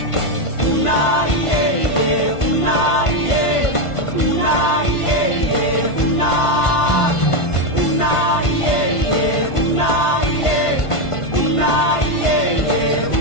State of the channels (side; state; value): right; late; 1.5 ms